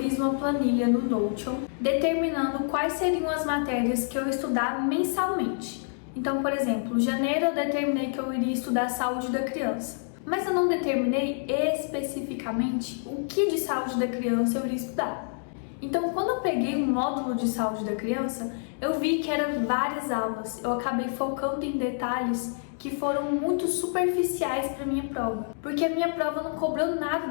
uma planilha no Notion determinando quais seriam as matérias que eu ia estudar mensalmente. Então, por exemplo, em janeiro eu determinei que eu iria estudar saúde da criança, mas eu não determinei especificamente o que de saúde da criança eu iria estudar. Então, quando eu peguei um módulo de saúde da criança, eu vi que eram várias aulas. Eu acabei focando em detalhes que foram muito superficiais para minha prova, porque a minha prova não cobrou nada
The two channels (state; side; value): silent; right; digital silence